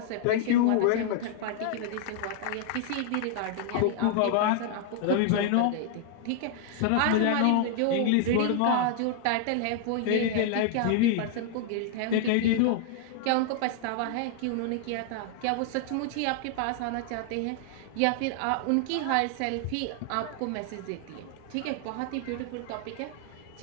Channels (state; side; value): different; both; correlation 0.00